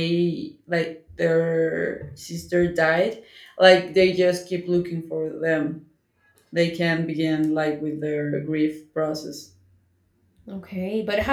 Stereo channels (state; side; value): identical; both; correlation 1.00